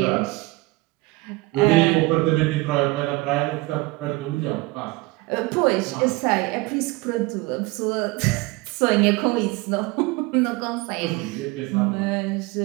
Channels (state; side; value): quieter; left; 22.6 dB